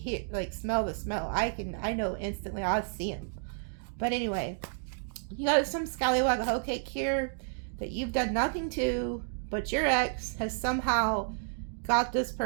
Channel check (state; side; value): silent; left; digital silence